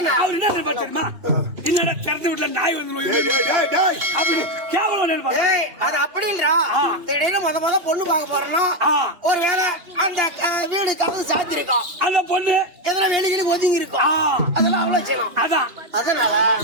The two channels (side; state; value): left; late; 2.8 ms